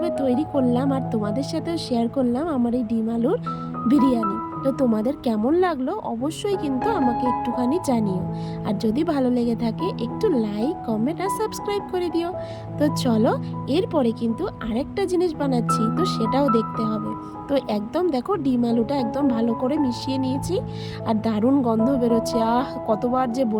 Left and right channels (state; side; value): identical; both; correlation 1.00